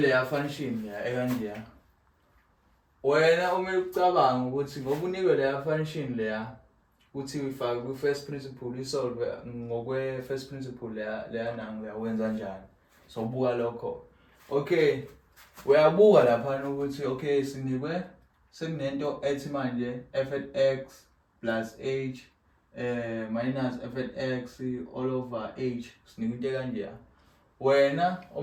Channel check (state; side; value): identical; both; correlation 1.00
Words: leya function leya ekanje. Wena uma ucabanga ukuthi ngoba unikwe leya function leya uthi uyifake ku-first principle isolve ngokwe-first principle leya nangu uyawenza kanjani. So buka lokho. Okay, uyabuka lapha ukuthi okay sinikwe sekunento ethi manje f at x plus h minus f at x all over h sinikwe into kanje. Wena